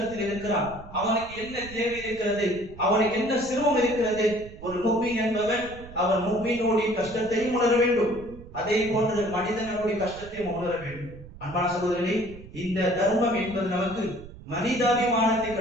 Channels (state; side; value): noise; right; rumble, 17 dB below the sound